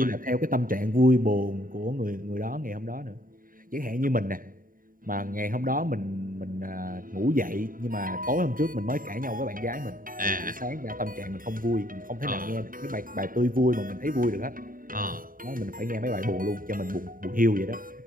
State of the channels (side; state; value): left; late; 0.40 ms